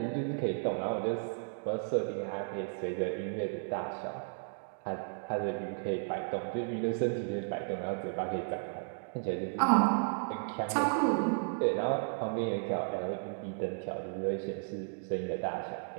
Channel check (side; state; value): left; silent; digital silence